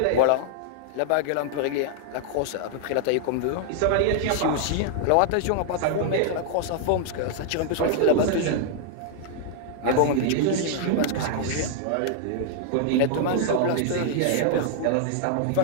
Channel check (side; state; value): both; different; correlation -0.01